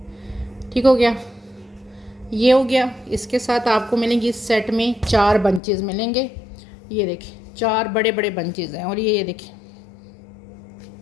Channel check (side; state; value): right; drops out; at 5.6 s